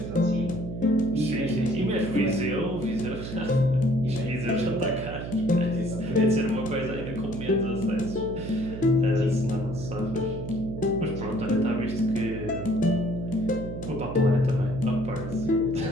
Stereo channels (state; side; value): noise; right; hum, 7 dB below the sound